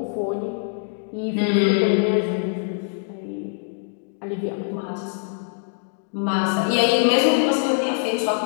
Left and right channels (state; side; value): silent; right; digital silence